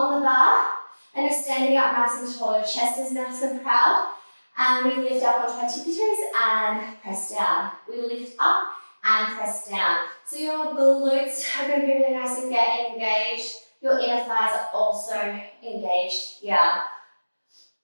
the bar. And you're standing up nice and tall. Your chest is nice and proud. And we lift up onto our tippy toes and press down. We lift up and press down. So your glutes are going to be really nice and get engaged. Your inner thighs are also engaged here,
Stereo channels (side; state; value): both; inverted; correlation -1.00